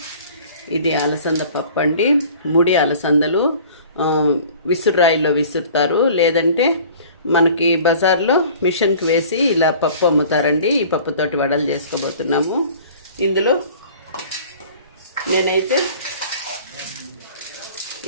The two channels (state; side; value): inverted; both; correlation -0.47